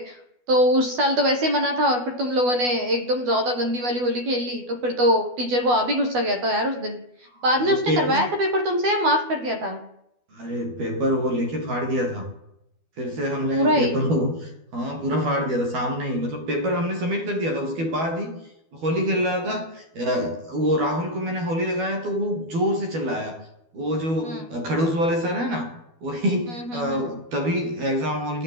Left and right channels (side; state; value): left; late; 12 ms